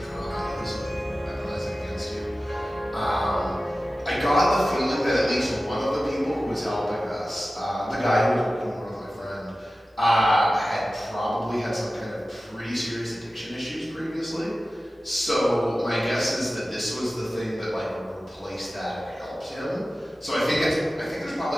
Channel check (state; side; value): normal; both; correlation 0.96